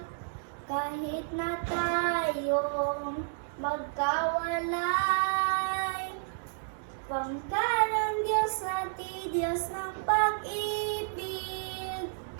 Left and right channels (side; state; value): left; silent; digital silence